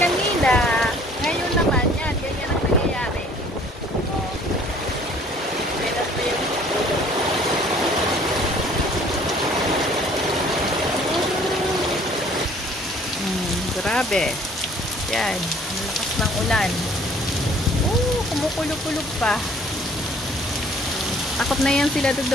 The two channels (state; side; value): normal; both; correlation 0.55